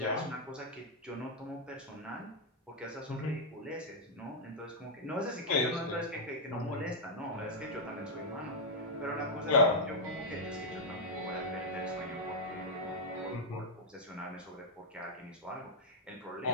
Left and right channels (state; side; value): normal; both; correlation -0.05